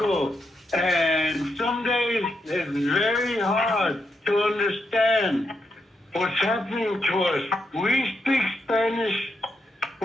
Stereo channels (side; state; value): both; normal; correlation 0.82